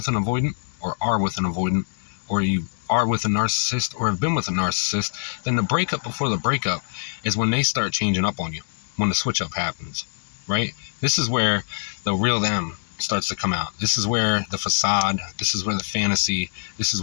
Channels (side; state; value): right; silent; digital silence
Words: an avoidant or are with an avoidant, or you are with a narcissist or have been with a narcissist, then the breakup before the breakup is when they start changing up on you, when the switch up happens, right? This is where the real them starts to come out. This is where the facade, this is where the fantasy, this is